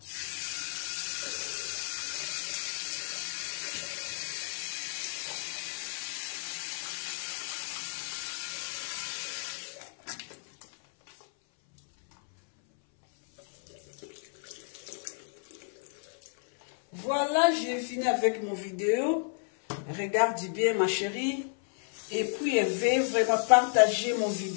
Voilà, j'ai fini avec mon vidéo. Regarde bien ma chérie. Et puis, veuillez vraiment partager mon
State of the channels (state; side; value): silent; right; 57 dB below the other